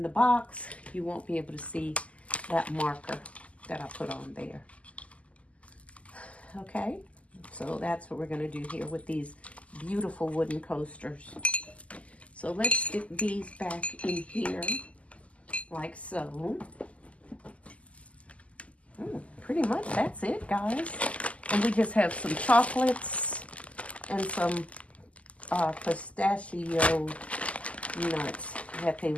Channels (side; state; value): right; late; 0.065 ms